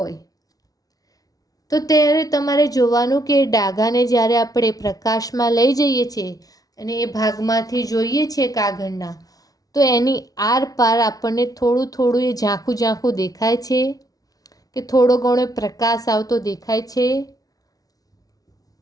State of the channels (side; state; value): right; late; 0.18 ms